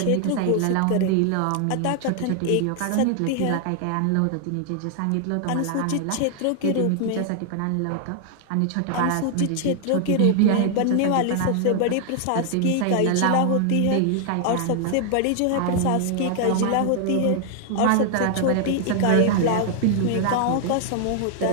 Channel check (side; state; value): both; different; correlation 0.00